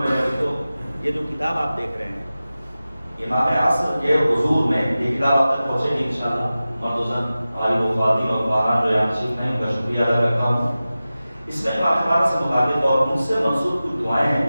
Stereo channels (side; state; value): both; inverted; correlation -0.95